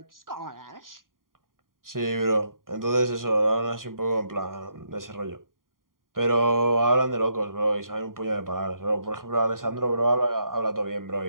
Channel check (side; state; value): left; late; 0.91 ms